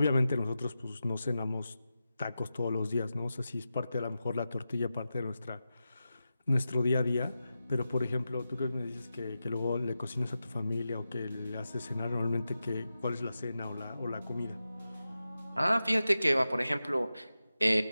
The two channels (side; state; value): both; inverted; correlation -0.92